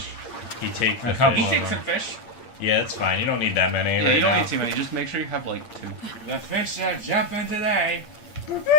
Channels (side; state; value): right; late; 8.7 ms